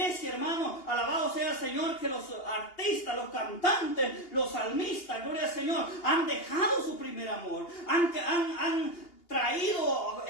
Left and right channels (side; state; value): right; late; 2.8 ms